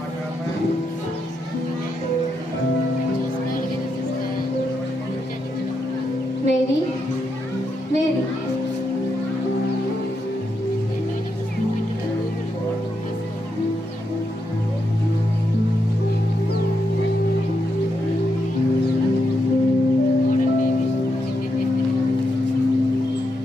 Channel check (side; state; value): both; normal; correlation 0.82